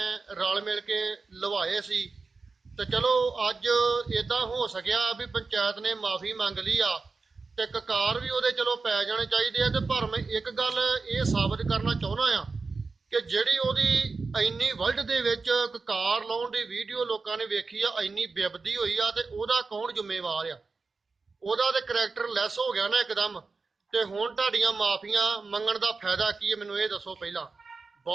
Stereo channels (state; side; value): quieter; left; 4.2 dB